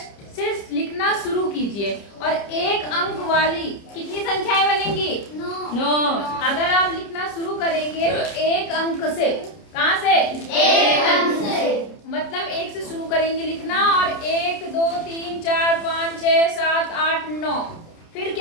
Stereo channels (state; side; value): late; right; 30 ms